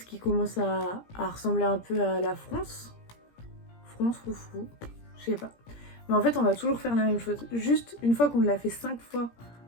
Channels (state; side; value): late; right; 17 ms